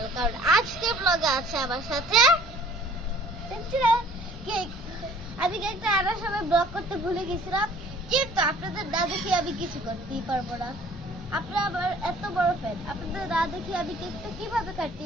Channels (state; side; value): normal; both; correlation 0.53